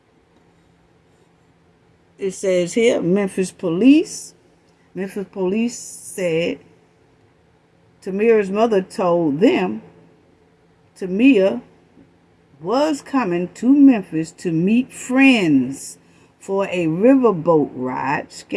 here, Memphis police said Tamia's mother told them Tamia was coming to Memphis to meet friends for a riverboat ride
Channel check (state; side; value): identical; both; correlation 1.00